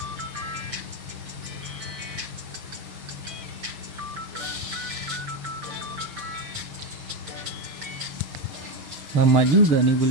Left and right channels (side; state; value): left; late; 6.7 ms